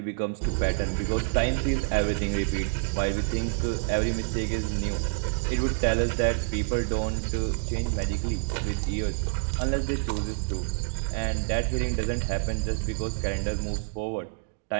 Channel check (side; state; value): left; silent; digital silence